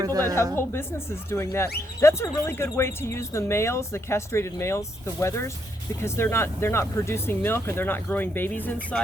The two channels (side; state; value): both; normal; correlation 0.76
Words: that have whole businesses doing that. That's a really good way to use the males, the castrated males, the wethers, because they're not producing milk and they're not growing babies